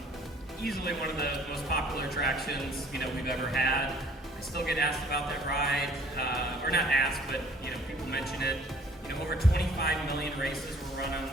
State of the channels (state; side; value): normal; both; correlation 0.55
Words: Easily one of the most popular attractions we've ever had. I still get asked about that ride, or not asked, but people mention it. Over 25 million races were run on